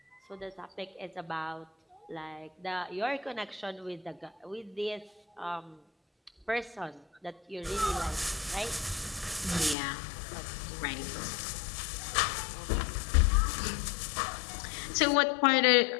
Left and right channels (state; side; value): drops out; right; at 9.8 s